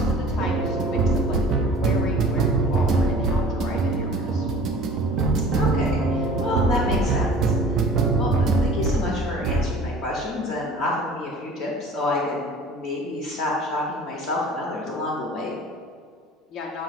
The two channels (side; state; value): both; normal; correlation 0.45